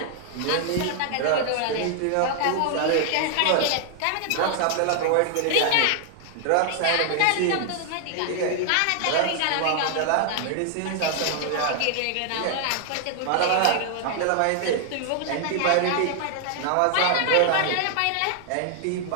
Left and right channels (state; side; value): different; both; correlation 0.00